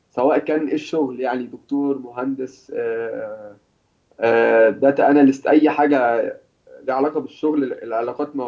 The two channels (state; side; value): identical; both; correlation 1.00